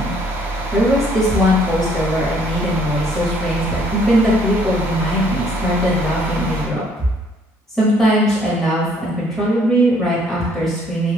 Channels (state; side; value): normal; both; correlation 0.63